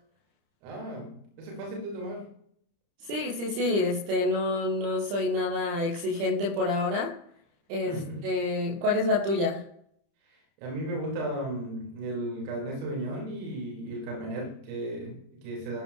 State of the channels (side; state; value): left; late; 30 ms